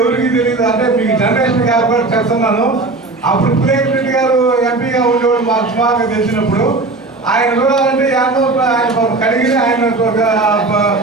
ఎవరికి తెలియదు, అంటే మీకు జనరేషన్ గారు కూడా చెప్తున్నాను. అప్పుడు ప్లేట్ రెడ్డి గారు ఎంపీగా ఉండేవాడు మాకు సుమారుగా తెలిసినప్పుడు. ఆయన చూడాలంటే ఆయన కడిగి ఆయన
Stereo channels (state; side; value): quieter; left; 3.3 dB